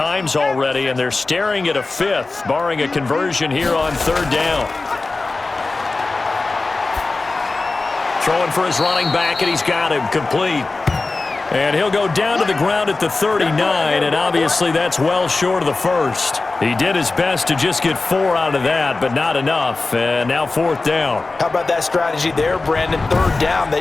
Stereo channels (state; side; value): quieter; right; 3.5 dB